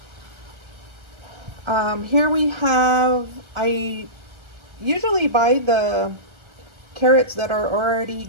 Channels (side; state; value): left; late; 1.4 ms